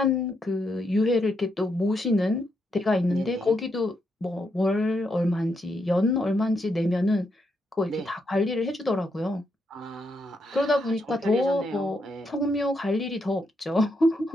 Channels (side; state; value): both; normal; correlation 0.80